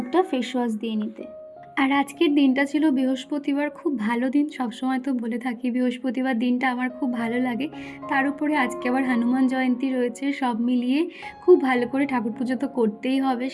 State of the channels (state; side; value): identical; both; correlation 1.00